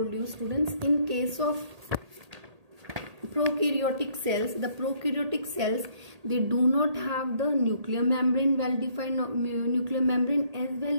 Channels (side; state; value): left; late; 1.8 ms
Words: you, students. In case of prokaryotic cells, the prokaryotic cells, they do not have the nuclear membrane, well-defined nuclear membrane, as